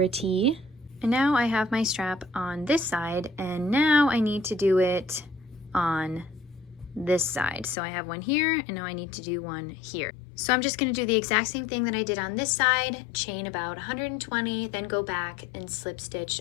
And now I have my strap on this side, and now I need to do it on this side. So I have one here, and now I need to do one here. So I'm just going to do the exact same thing that I did on this side, chain about 120, then go back and slip stitch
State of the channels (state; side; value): drops out; right; at 7.8 s